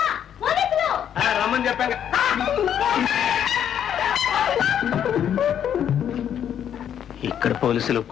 రమ్మని చెప్పాక. ఇక్కడ పోలీసులకు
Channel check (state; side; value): quieter; right; 9.3 dB